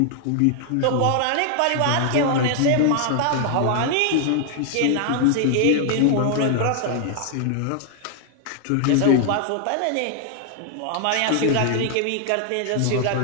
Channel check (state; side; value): different; both; correlation 0.00